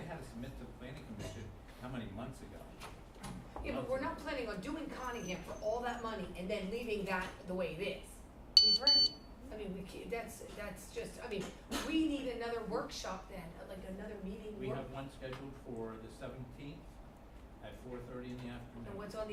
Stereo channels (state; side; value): identical; both; correlation 1.00